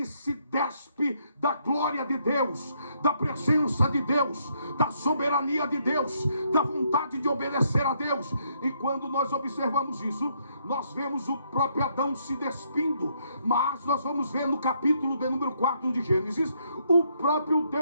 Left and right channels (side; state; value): both; inverted; correlation -0.73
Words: se despe da glória de Deus, da presença de Deus, da soberania de Deus, da vontade de obedecer a Deus. E quando nós observamos isso, nós vemos o próprio Adão se despindo. Mas nós vamos ver no capítulo de número 4 de Gênesis, o próprio